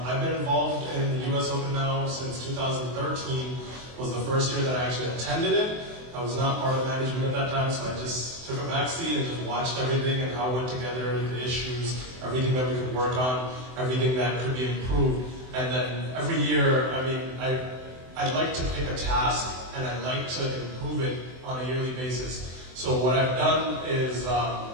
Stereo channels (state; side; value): late; left; 24 ms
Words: been involved in the US Open now since 2013. Was the first year that I actually attended it. I was not part of management at that time, so I just took a back seat and just watched everything and how it went together, the issues, everything that we could work on, everything that could be improved. And then every year, I mean, I'd like to pick a task and I'd like to improve it on a yearly basis. So what I've done is,